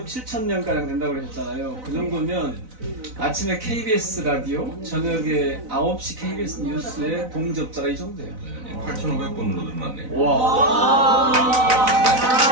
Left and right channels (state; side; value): late; left; 4.0 ms